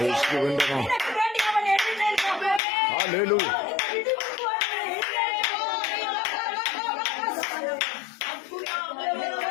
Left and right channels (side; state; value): right; drops out; at 2.6 s